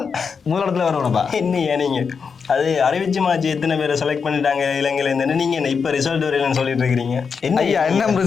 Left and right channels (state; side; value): quieter; right; 5.8 dB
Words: முதலிடத்துல வரணும்ப்பா. என்னையா நீங்கள் அது அறிவிச்சு மாச்சு எத்தனை பேரை செலக்ட் பண்ணிட்டாங்க இலங்கையில இருந்து? நீங்க என்ன இப்ப ரிசல்ட் வரலன்னு சொல்லிட்டு இருக்கிறீங்க? என்ன ஐயா? என்ன